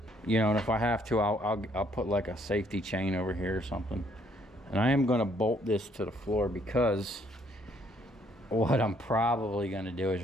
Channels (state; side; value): normal; both; correlation 0.66